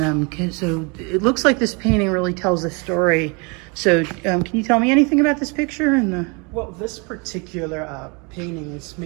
so it looks like this painting really tells a story. So can you tell me anything about this picture? Well, this particular painting is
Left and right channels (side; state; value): left; quieter; 31.2 dB